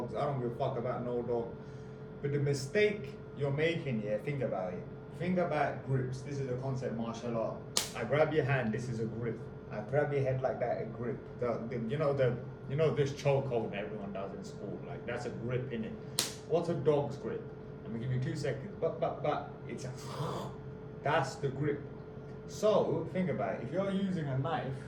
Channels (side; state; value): both; identical; correlation 1.00